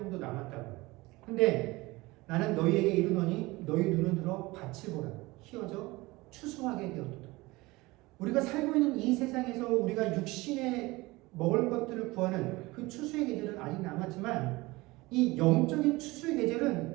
남았다고. 근데 나는 너희에게 이르노니 너희 눈을 들어 밭을 보라. 희어져 추수하게 되었도다. 우리가 살고 있는 이 세상에서 우리가 육신에 먹을 것들을 구하는 그 추수의 계절은 아직 남았지만, 이 영적인 추수의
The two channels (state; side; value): quieter; left; 21.5 dB